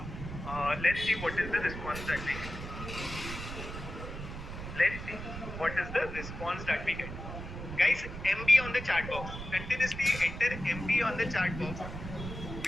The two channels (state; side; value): noise; right; rumble, 8 dB below the sound